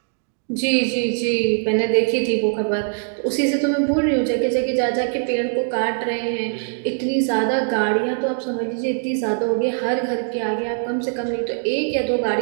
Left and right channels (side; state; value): left; silent; 65 dB below the other